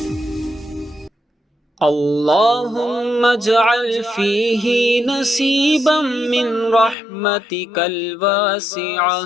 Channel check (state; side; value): drops out; right; at 7.0 s